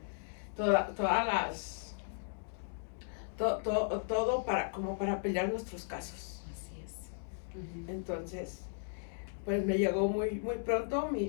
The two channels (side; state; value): right; silent; digital silence